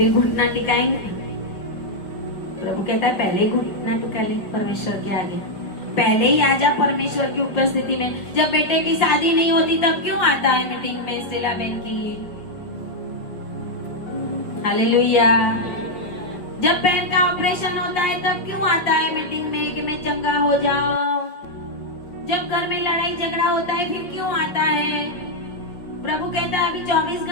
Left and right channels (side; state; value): right; late; 5.0 ms